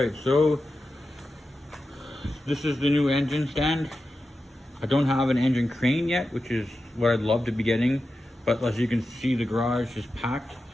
so this is the new engine stand. I don't have an engine crane yet, which is what I'd love to be getting, but as you can see, the garage is packed.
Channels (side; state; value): both; normal; correlation 0.91